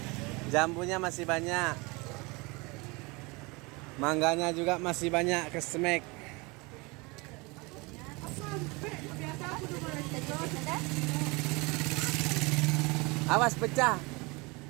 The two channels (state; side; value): quieter; left; 26.4 dB